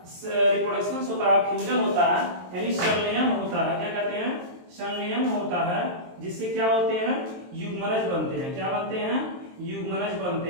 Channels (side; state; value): left; late; 23 ms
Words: रिप्रोडक्शन होता है, फ्यूजन होता है, यानी संलयन होता है। क्या कहते हैं, संलयन होता है, जिससे क्या होते हैं, युग्मनज बनते हैं। क्या बनते हैं, युग्मनज